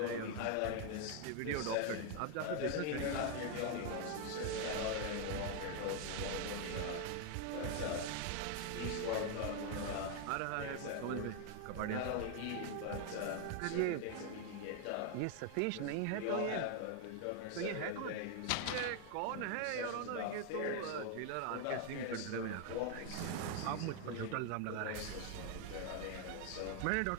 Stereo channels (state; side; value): different; both; correlation 0.01